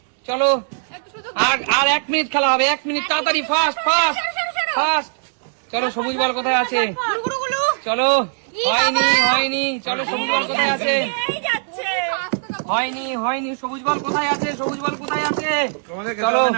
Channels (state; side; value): silent; left; digital silence